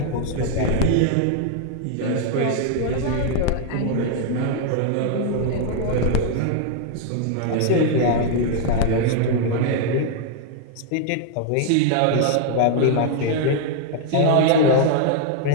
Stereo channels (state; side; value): different; both; correlation 0.00